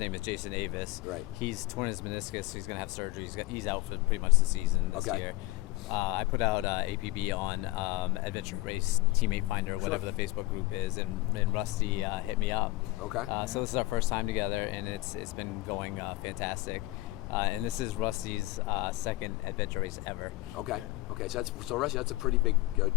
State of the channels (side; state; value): right; quieter; 19.9 dB